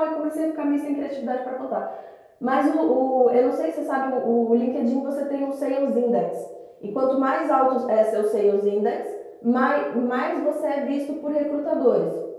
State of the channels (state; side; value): identical; both; correlation 1.00